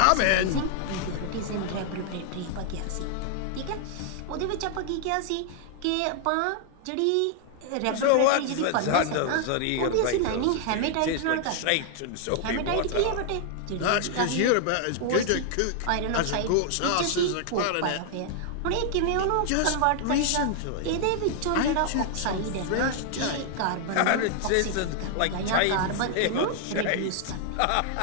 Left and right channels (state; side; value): different; both; correlation 0.00